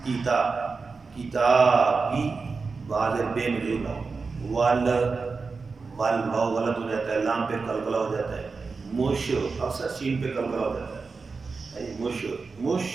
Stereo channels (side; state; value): left; quieter; 4.5 dB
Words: किता किताबी बाज़ बे मौजूद हो। वल वल वाव गलत हो जाता है। लाम पे कलकला हो जाता है। मुश अक्सर शीन पे कलकला हो जाता है। मुश